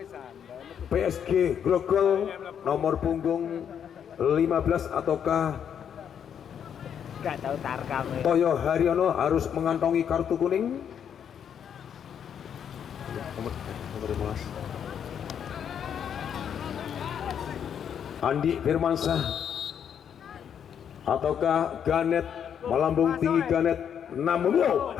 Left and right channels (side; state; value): right; quieter; 8.4 dB